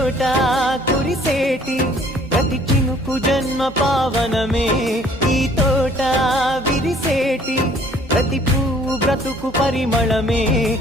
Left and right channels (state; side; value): normal; both; correlation 0.57